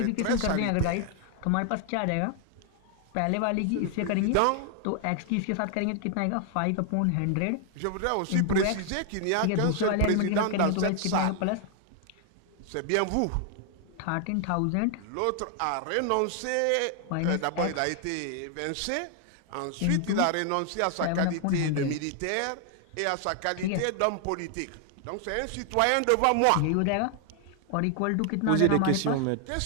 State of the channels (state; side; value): different; both; correlation 0.00